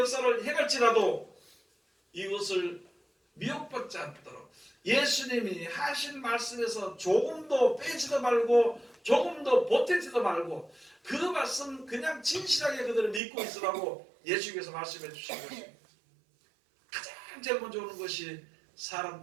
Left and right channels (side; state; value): left; drops out; at 13.2 s